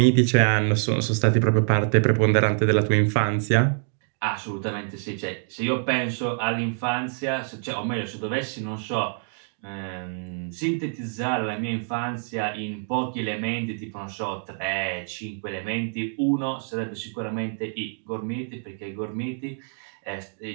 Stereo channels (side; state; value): left; silent; 61 dB below the other